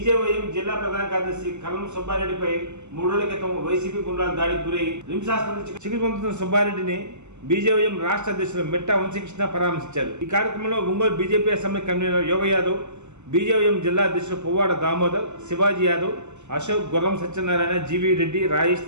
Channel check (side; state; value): left; late; 0.83 ms